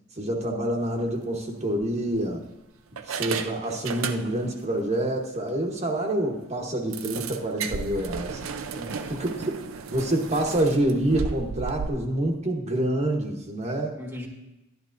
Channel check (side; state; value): both; normal; correlation 0.54